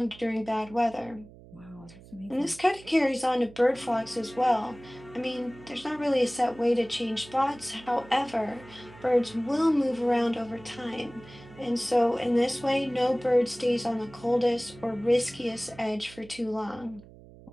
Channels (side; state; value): right; noise; hum, 21 dB below the sound